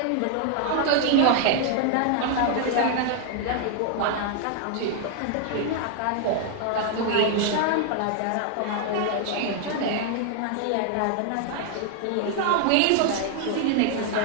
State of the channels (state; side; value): different; both; correlation 0.00